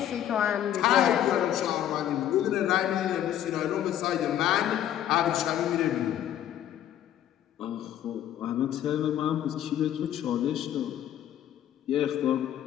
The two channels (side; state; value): right; quieter; 11.2 dB